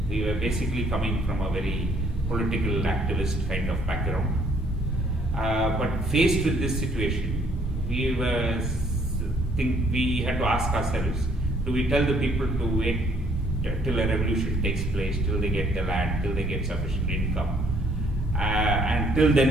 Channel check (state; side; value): normal; both; correlation 0.64